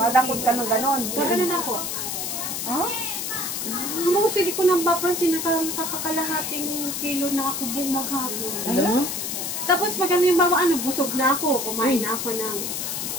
Madakot kilo. ka ng ganon. Gaganon ako. Most hindi ko nang papansin na nakakalahating kilo na ako buong maghapon. Tapos pag ano yung bawa, busog na ako. Kumain na ako ng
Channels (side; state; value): left; noise; hiss, 3 dB below the sound